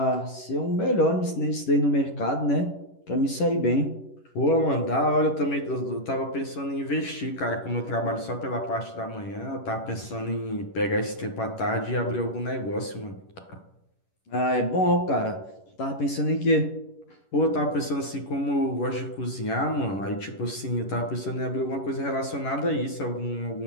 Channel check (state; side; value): late; right; 11 ms